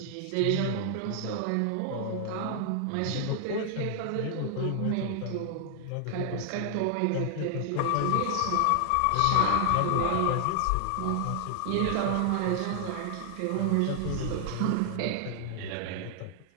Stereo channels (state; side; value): different; both; correlation 0.00